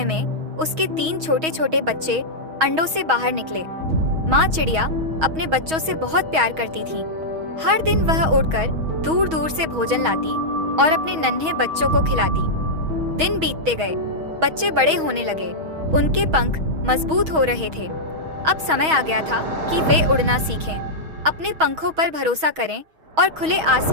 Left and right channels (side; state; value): left; late; 6.3 ms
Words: में उसके 3 छोटे छोटे बच्चे अंडों से बाहर निकले। माँ चिड़िया अपने बच्चों से बहुत प्यार करती थी। हर दिन वह उड़कर दूर दूर से भोजन लाती और अपने नन्हे बच्चों को खिलाती। दिन बीतते गए, बच्चे बड़े होने लगे, उनके पंख मजबूत हो रहे थे। अब समय आ गया था कि वे उड़ना सीखें, अपने पंखों पर भरोसा करें और खुले